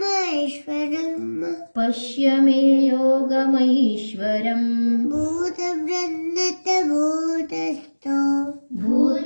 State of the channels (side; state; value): both; inverted; correlation -1.00